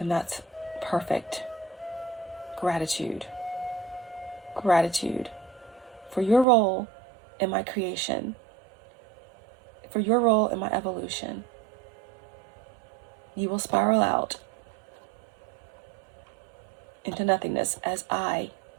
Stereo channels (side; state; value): left; drops out; at 6.5 s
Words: that's perfect. Gratitude. Gratitude for your role in my creation, for your role in my evolution. You will spiral out into nothingness as I